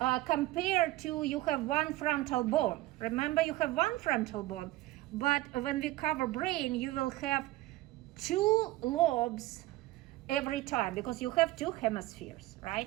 compared to you have one frontal bone. Remember, you have one frontal bone, but when we cover brain, you will have two lobes every time because you have two hemispheres,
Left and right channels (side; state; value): left; quieter; 17.7 dB